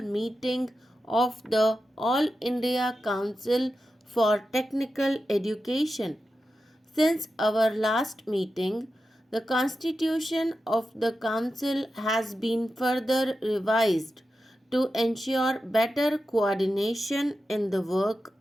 meeting of the All India Council for Technical Education. Since our last meeting, the constitution of the council has been further revised to ensure better coordination in the work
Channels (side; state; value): both; normal; correlation 0.91